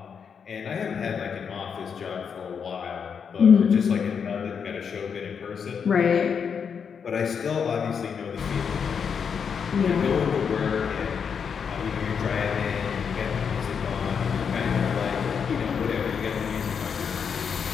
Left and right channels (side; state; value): right; quieter; 6.7 dB